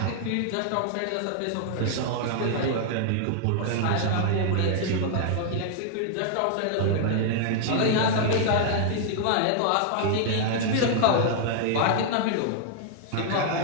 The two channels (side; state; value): both; different; correlation -0.01